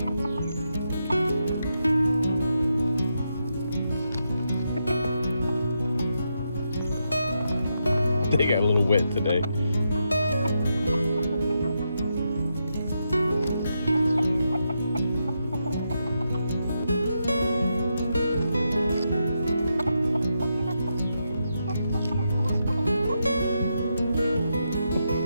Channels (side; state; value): both; inverted; correlation -0.84